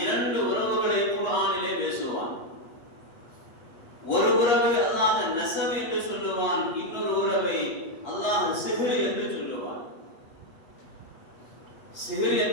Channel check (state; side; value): late; right; 8.4 ms